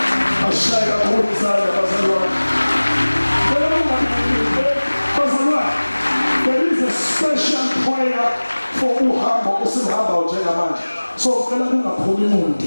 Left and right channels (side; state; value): both; inverted; correlation -1.00